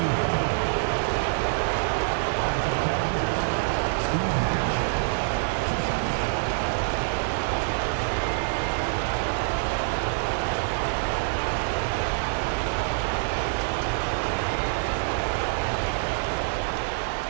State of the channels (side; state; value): left; silent; digital silence